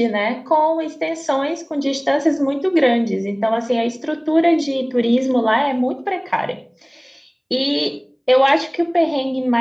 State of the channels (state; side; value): identical; both; correlation 1.00